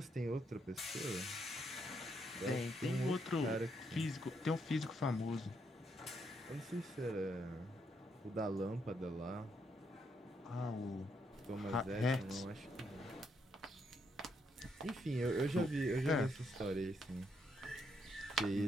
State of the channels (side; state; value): both; normal; correlation 0.76